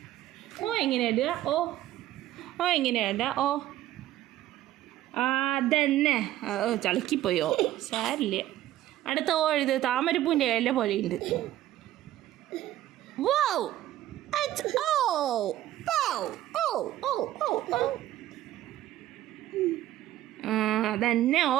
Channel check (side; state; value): left; quieter; 13.8 dB